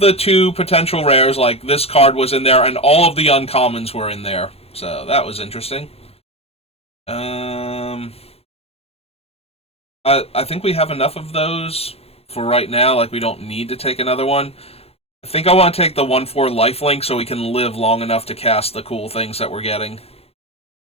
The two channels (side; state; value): right; late; 0.29 ms